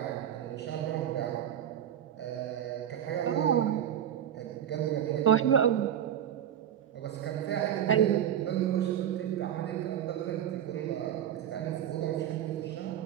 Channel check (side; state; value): left; quieter; 10.2 dB